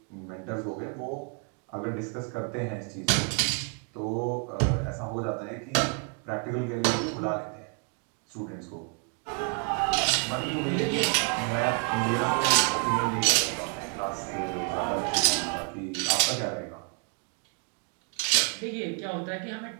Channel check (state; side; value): quieter; left; 37.6 dB